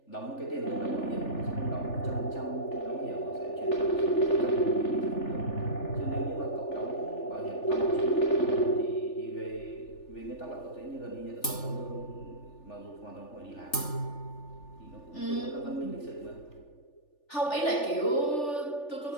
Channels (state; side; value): late; right; 3.4 ms